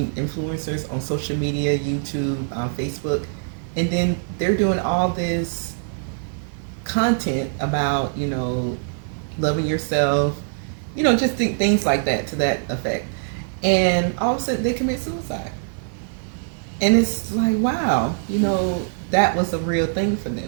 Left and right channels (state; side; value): silent; left; digital silence